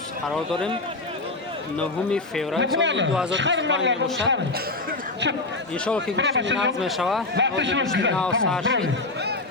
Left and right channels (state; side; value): quieter; right; 3.1 dB